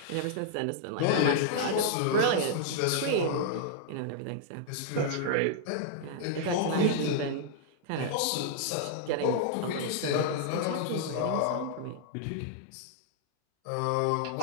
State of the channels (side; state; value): both; different; correlation -0.01